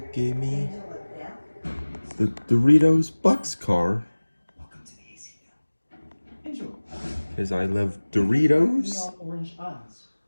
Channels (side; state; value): both; inverted; correlation -1.00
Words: gave me the Doritos Bucks car. Because I love Doritos. Orange eyes